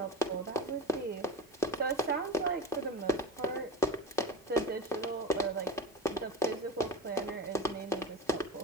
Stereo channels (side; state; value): both; normal; correlation 0.25